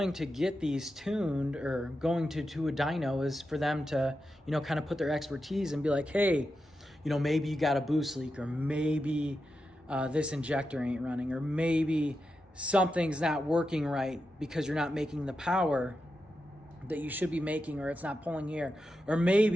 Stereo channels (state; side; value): normal; both; correlation 0.89